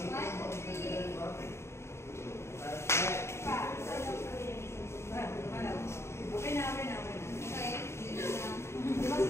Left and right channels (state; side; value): late; right; 0.13 ms